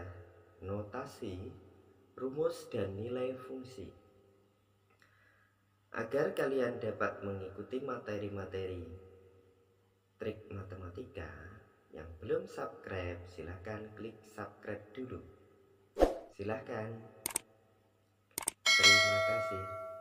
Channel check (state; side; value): identical; both; correlation 1.00